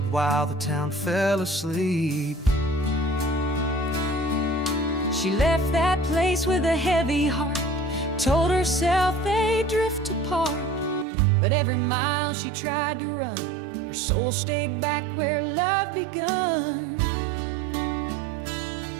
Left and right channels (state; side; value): drops out; left; at 11.1 s